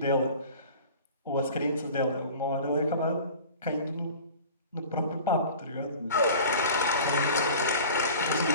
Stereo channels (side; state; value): both; inverted; correlation -0.41